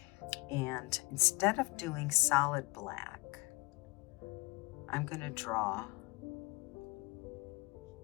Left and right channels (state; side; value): quieter; right; 24.7 dB